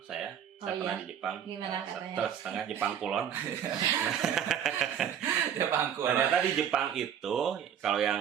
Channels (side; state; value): left; quieter; 8.9 dB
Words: saya Oh, pernah iya? di Jepang. Gimana katanya? Setengah Jepang kulon. Ya bangku. Ternyata di Jepang itu, kalau